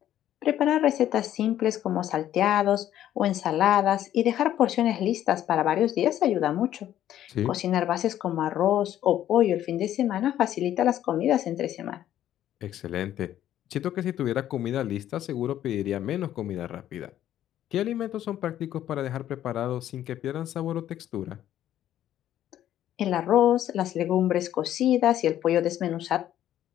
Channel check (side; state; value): right; quieter; 11.8 dB